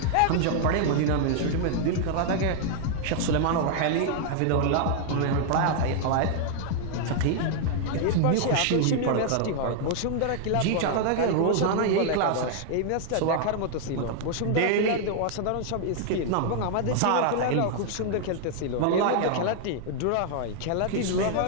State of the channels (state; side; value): different; both; correlation -0.01